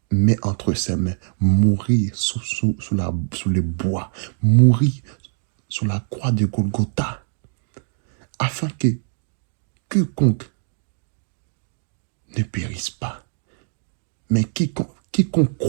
mis entre ses mains, mourir sous les bois, mourir sur la croix de Golgotha, afin que quiconque ne périsse pas, mais quiconque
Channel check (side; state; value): left; silent; 58 dB below the other